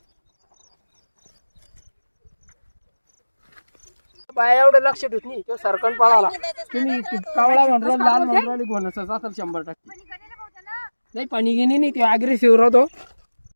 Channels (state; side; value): inverted; both; correlation -1.00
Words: बाया एवढं लक्ष ठेवत नाही, तो सरकन पळाला. तुम्ही कावळा म्हणून लाल म्हणून घोणसा असेल 100%. नाही, पाणी घेणे नाही, ते अग्रेसिव्ह राहतो.